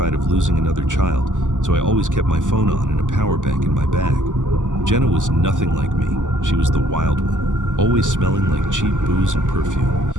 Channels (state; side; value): late; left; 0.87 ms